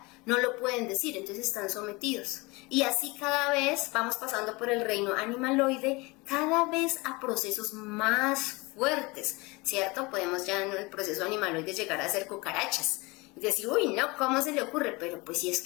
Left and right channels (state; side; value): quieter; right; 24.8 dB